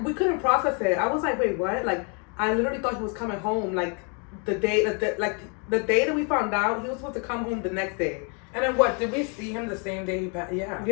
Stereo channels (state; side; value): quieter; right; 36.8 dB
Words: We couldn't process it. I was like, wait, what? Like, I literally thought he was coming home. Like, the day that we found out, he was supposed to come home the next day. And then what? Did we see him the same day he passed? Yeah.